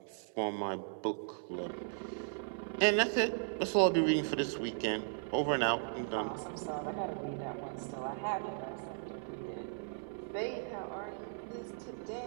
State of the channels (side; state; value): left; silent; 53 dB below the other